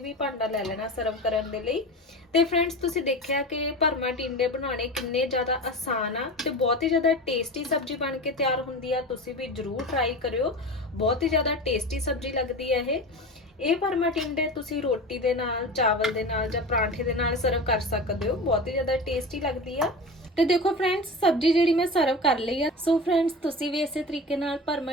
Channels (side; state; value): both; normal; correlation 0.30